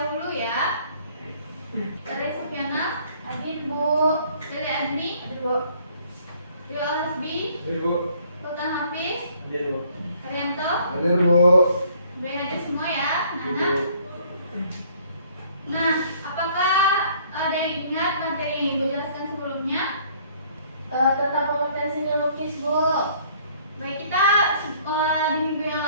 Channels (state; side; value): inverted; both; correlation -0.59